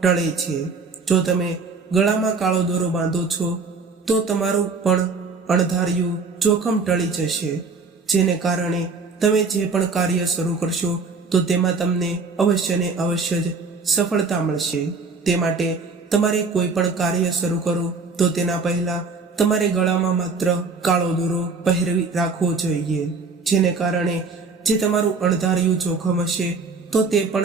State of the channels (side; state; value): left; quieter; 4.4 dB